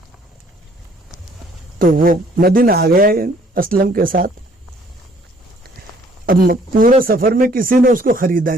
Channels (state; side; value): normal; both; correlation 0.60